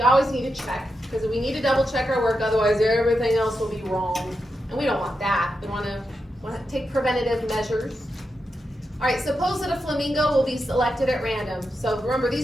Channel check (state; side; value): normal; both; correlation 0.87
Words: always need to check, because we need to double check our work, otherwise everything else will be wrong. And we don't want that. We want to take preventative measures. All right, suppose that a flamingo will be selected at random. So remember,